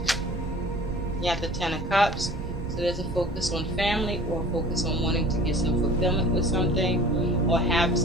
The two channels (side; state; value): right; noise; rumble, 8 dB below the sound